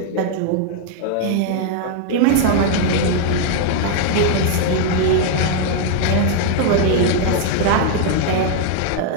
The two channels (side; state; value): both; different; correlation 0.00